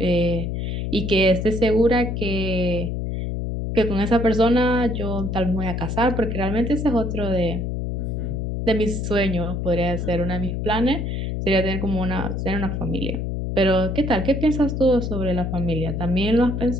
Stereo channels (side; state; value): left; noise; hum, 2 dB below the sound